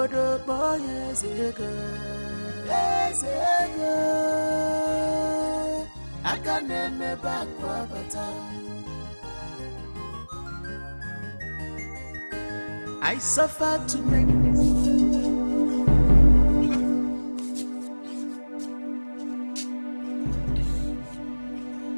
Boy Ezego, I can name back Wabata. I suffer to make this.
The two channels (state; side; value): inverted; both; correlation -1.00